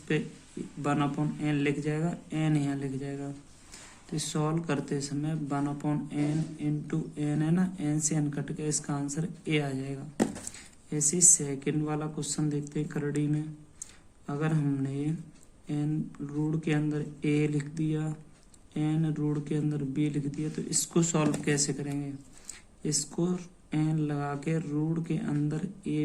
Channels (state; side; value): identical; both; correlation 1.00